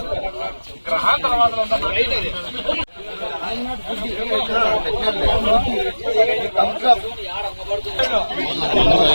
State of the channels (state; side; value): inverted; both; correlation -1.00